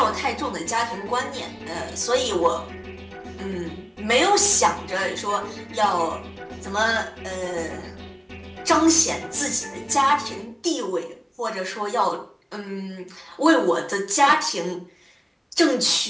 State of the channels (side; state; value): both; identical; correlation 1.00